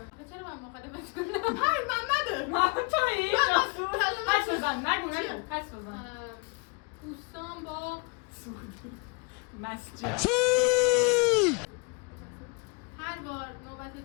چرا من مخالفت کنم؟ های محمده. محمد تویی؟ حدس بزن، نگو حدس بزن. دوستان با مسجد. هر بار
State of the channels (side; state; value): right; quieter; 32.2 dB